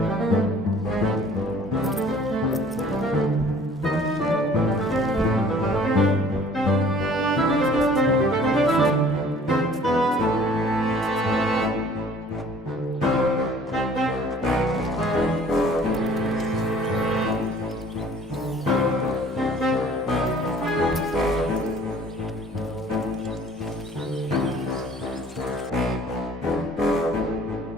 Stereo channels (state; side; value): normal; both; correlation 0.52